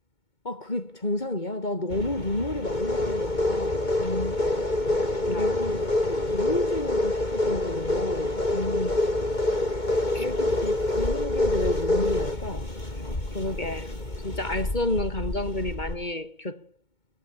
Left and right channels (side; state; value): right; late; 2.2 ms